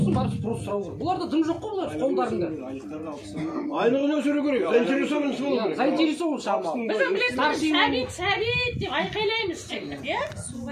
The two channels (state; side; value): identical; both; correlation 1.00